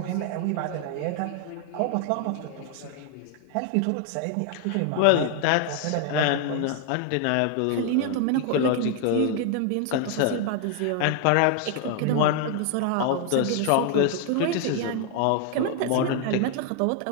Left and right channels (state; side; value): different; both; correlation 0.00